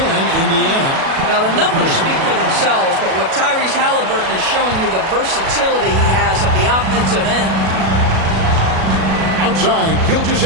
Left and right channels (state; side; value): late; left; 37 ms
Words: Indiana. Now, the numbers speak for themselves, but what Tyrese Halliburton is showing you the versatility he has at the offensive end. Outside,